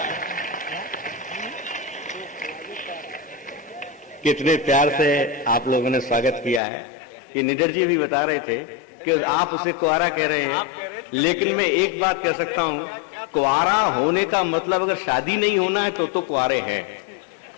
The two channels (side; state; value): right; drops out; at 6.6 s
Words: कितने प्यार से आप लोगों ने स्वागत किया है। ये निडर जी भी बता रहे थे कि आप उसे कुआरा कह रहे हैं, लेकिन मैं एक बात कह सकता हूं, कुंवारा होने का मतलब अगर शादी नहीं होना है तो कुंवारे हैं।